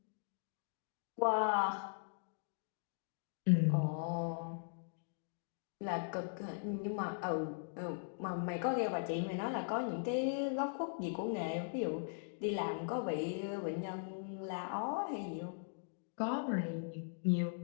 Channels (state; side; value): silent; right; digital silence